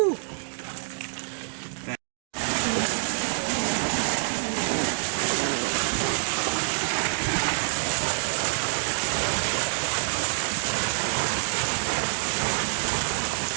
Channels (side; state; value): left; silent; digital silence